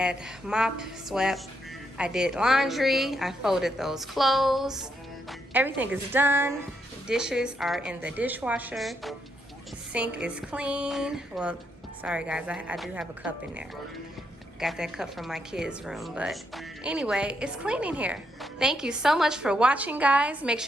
mop, swept, I did laundry, I folded those clothes. Everything is done. Dishes are in the dishwasher. Sink is clean. Well, sorry guys, I do have a cup in there. Got that cup from my kids' room, but anyway, it's clean in here. Thank you so much for watching, guys. Make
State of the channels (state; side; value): normal; both; correlation 0.79